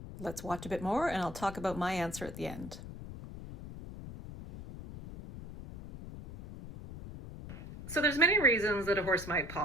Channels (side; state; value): left; noise; rumble, 12 dB below the sound